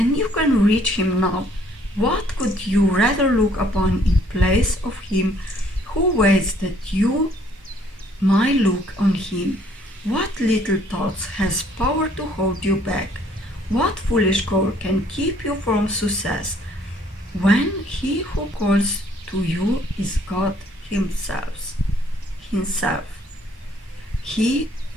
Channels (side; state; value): both; normal; correlation 0.62